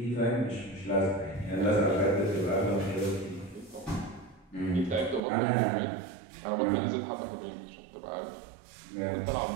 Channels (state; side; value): drops out; left; at 5.2 s